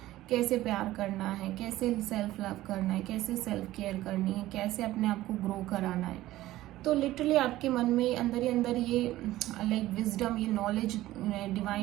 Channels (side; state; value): left; quieter; 15.8 dB